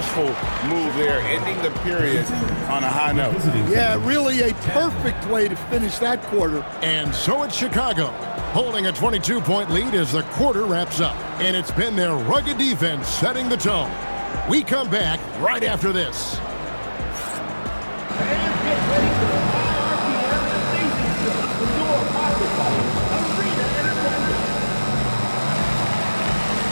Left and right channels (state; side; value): inverted; both; correlation -1.00